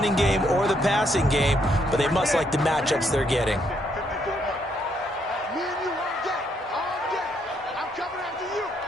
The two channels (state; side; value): normal; both; correlation 0.73